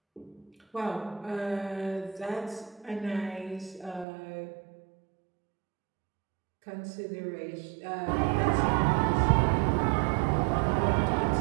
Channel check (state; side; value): drops out; left; at 4.0 s